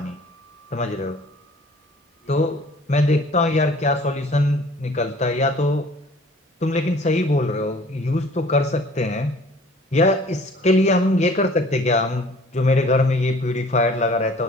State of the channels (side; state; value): both; normal; correlation 0.51